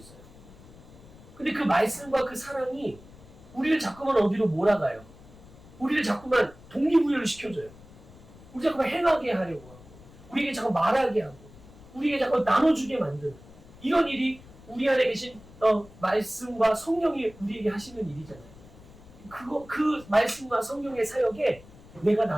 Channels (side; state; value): left; noise; rumble, 21 dB below the sound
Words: 근데 그 말씀과 그 사랑이 우리를 자꾸만 어디로 몰아가요. 우리를 자꾸만 동기부여를 시켜줘요. 우리 자꾸만 행하게 하려고 하고, 우리에게 자꾸 말하게 하고, 우리에게 자꾸 나눠주게 만드는 이런 일이 우리 안에 계신 말씀과 성령이 우리에게 하시는 일이잖아요. 그 말씀과 성령의 사역에 내가